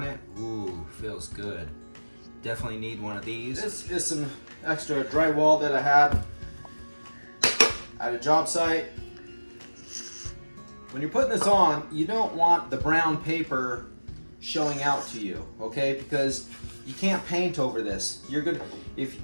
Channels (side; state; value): both; inverted; correlation -1.00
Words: it. Ooh, feels good. Definitely need one of these. This is some extra drywall that I had at a job site. When you're putting this on, you don't want the brown paper showing out to you, okay? Because you can't paint over this. You're good.